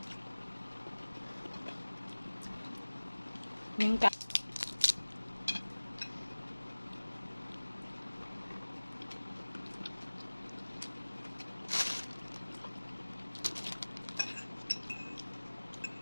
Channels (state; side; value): inverted; both; correlation -1.00